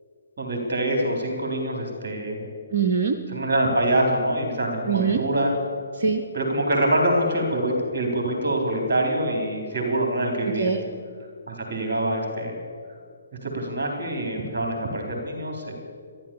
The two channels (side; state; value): both; inverted; correlation -0.61